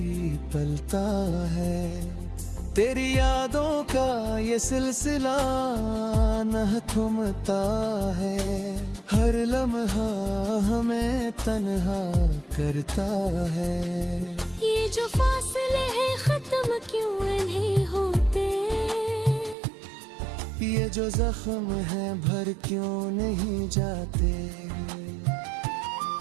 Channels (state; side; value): drops out; left; at 19.6 s